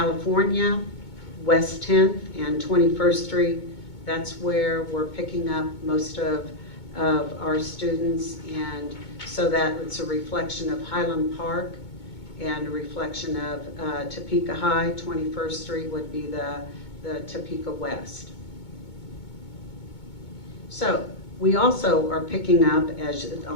West 10th and 21st Street, that's where we're picking up most of our students, and so that it's a reflection of Highland Park and a reflection of Topeka High. 21st Street would be the Topeka West. So we also are picking up, as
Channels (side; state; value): right; late; 2.2 ms